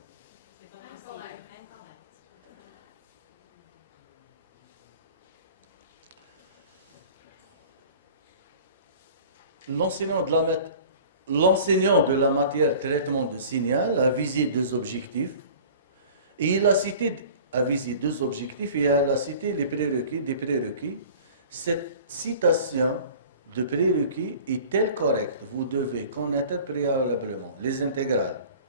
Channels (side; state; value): both; inverted; correlation -0.44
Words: L'enseignant de la matière traitement de signal a visé 2 objectifs et il a visé 2 objectifs et il a cité des prérequis Cette citation de prérequis est-elle correcte? Vous devez connaître préalablement les intégrales,